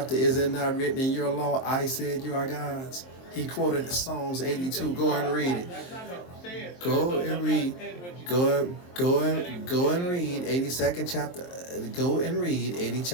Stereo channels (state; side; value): late; right; 23 ms